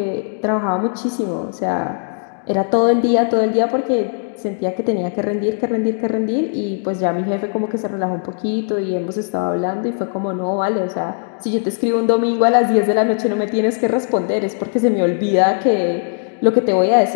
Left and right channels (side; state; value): right; silent; digital silence